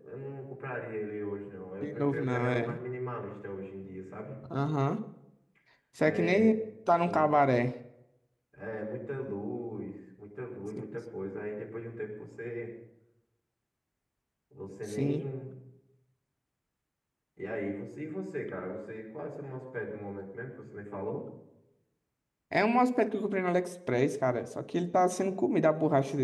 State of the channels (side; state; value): both; identical; correlation 1.00